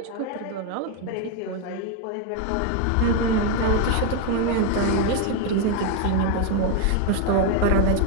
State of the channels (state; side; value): different; both; correlation 0.01